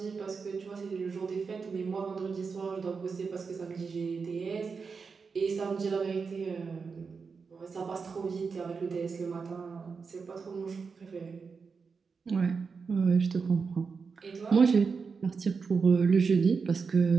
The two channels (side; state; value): left; quieter; 5.2 dB